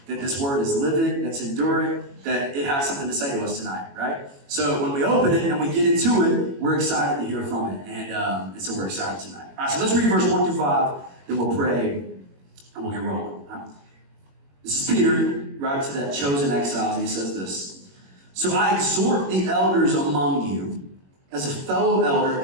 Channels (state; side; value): late; left; 21 ms